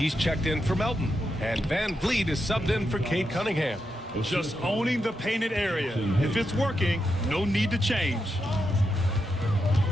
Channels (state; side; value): normal; both; correlation 0.85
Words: checked in for Melton. And Van Vliet is subbed in for Cade Cunningham. Just owning the painted area. If it's working, no need to change.